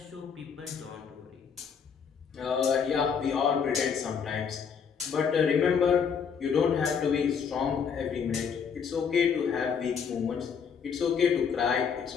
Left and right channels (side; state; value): right; quieter; 6.7 dB